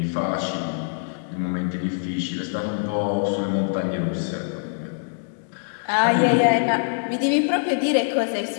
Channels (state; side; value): silent; right; digital silence